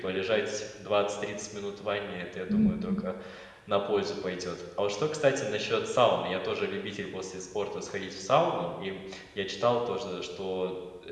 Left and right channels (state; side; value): identical; both; correlation 1.00